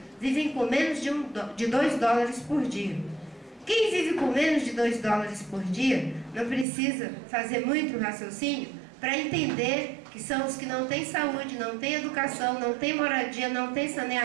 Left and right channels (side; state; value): left; drops out; at 6.7 s